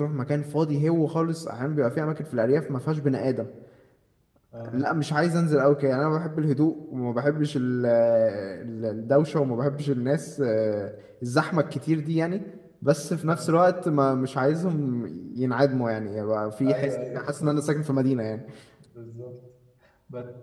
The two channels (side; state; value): both; identical; correlation 1.00